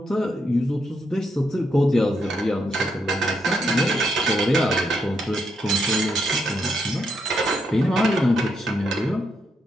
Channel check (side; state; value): both; normal; correlation 0.79